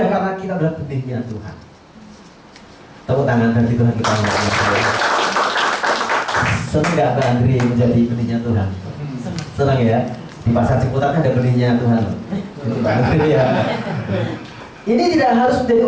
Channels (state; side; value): identical; both; correlation 1.00